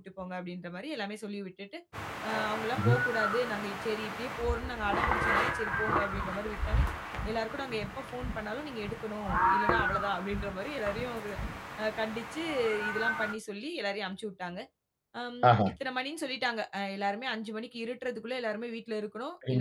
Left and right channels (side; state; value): both; identical; correlation 1.00